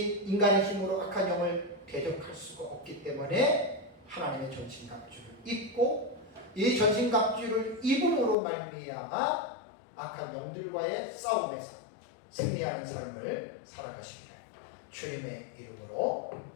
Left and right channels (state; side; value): drops out; right; at 8.3 s